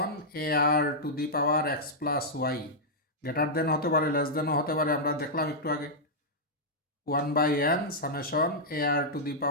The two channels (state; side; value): normal; both; correlation -0.08